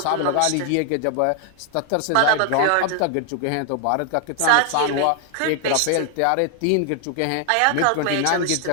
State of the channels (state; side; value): different; both; correlation 0.00